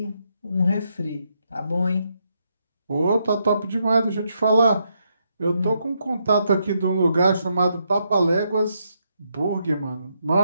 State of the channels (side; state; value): both; inverted; correlation -0.79